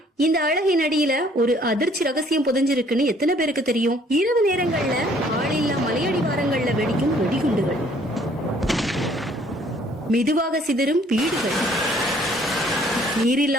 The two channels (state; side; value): normal; both; correlation 0.60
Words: இந்த அழகின் அடியில ஒரு அதிர்ச்சி ரகசியம் புதைஞ்சிருக்குன்னு எத்தனை பேருக்கு தெரியும்? இரவு நேரங்கள்ல ஆளில்லா மலையடிவாரங்கள்ல வெடிக்கும் வெடிகுண்டுகள், மெதுவாக சிதறும் வீடுகள்,